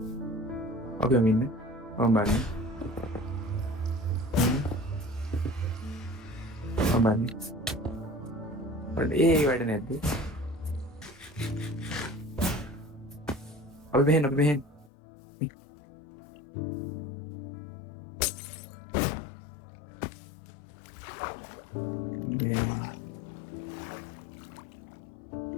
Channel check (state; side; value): drops out; right; at 14.9 s